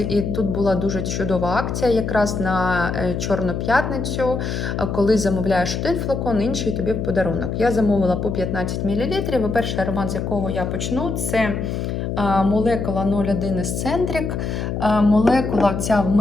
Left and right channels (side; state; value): left; noise; hum, 3 dB below the sound